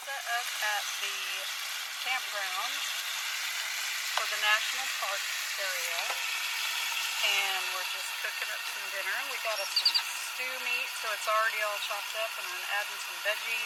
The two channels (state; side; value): identical; both; correlation 1.00